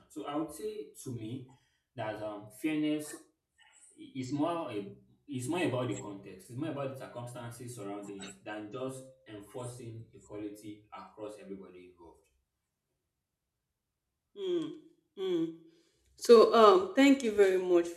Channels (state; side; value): identical; both; correlation 1.00